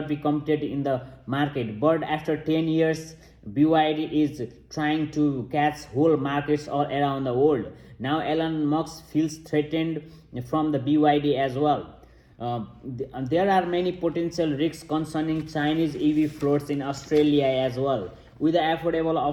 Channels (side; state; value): both; identical; correlation 1.00